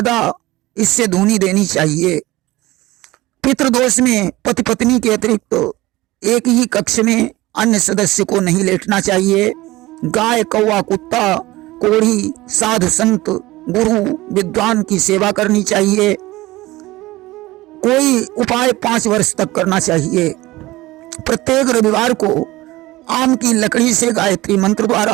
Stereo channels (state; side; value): quieter; left; 18.8 dB